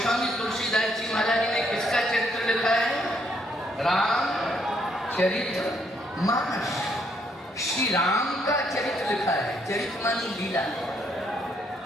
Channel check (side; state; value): both; normal; correlation 0.72